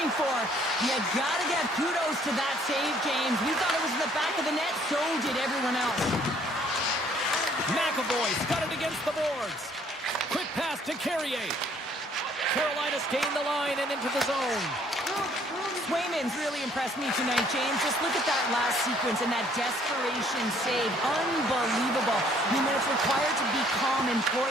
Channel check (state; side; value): normal; both; correlation 0.62